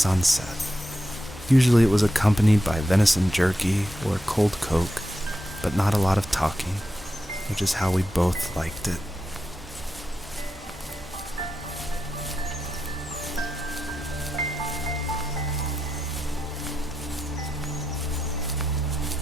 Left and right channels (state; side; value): normal; both; correlation 0.87